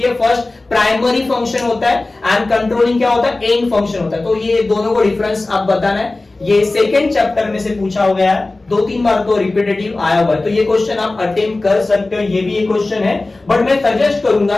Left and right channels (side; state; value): right; quieter; 3.1 dB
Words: है, फर्स्ट प्राइमरी फंक्शन होता है, एंड कंट्रोलिंग क्या होता है? एंड फंक्शन होता है। तो ये दोनों को डिफरेंस आप बताना है। ये सेकंड चैप्टर में से पूछा हो गया है, 2-3 बार तो रिपीटेटिव आया हुआ है, तो ये क्वेश्चन आप अटेम्प्ट कर सकते हो। ये भी एक क्वेश्चन है, बट मैं सजेस्ट